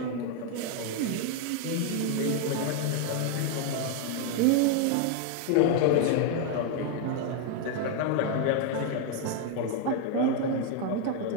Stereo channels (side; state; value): both; different; correlation 0.01